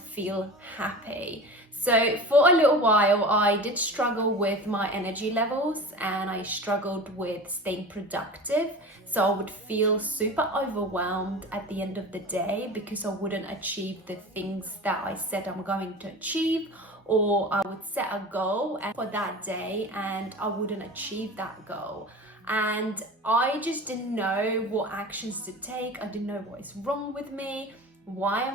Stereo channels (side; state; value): both; normal; correlation 0.34